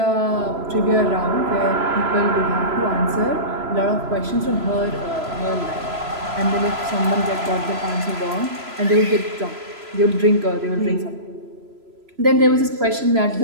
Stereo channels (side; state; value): left; late; 3.0 ms